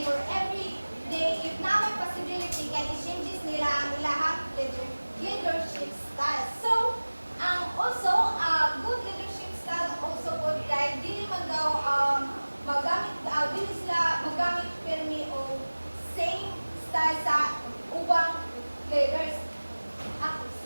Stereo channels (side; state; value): both; inverted; correlation -1.00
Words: or every day, if na may possibility, kaya i-changes nila ang ilahang leadership style. So, also, good leadership style also good guide, dili man daw dili sila magamit pirmi o same style sa ubang leaders.